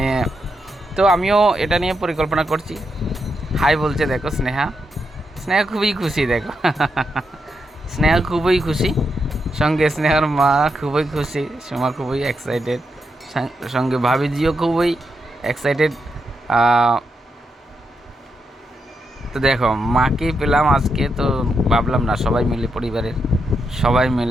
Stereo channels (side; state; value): both; normal; correlation 0.84